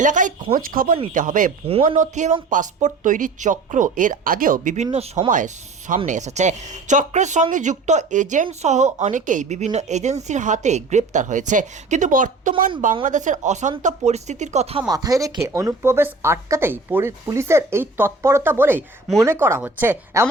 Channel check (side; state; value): left; quieter; 3.8 dB